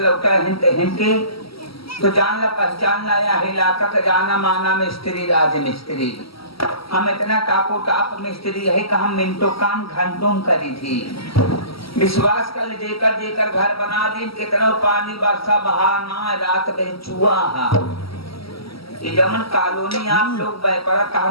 लौटा है हिंदी तो जान ला पहचान लाया है इलाका का जाना माना मिस्त्री राज मिस्त्री। हम इतना टापो टाप मिस्त्री है कि हम मिनटों काम घंटों में करी थी। विश्वास कर जेकर जेकर घर बना दी कितना पानी बरसा बहा ना रात में चुआ ये जमन कॉलोनी आप लोग बेपरा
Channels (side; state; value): right; late; 0.75 ms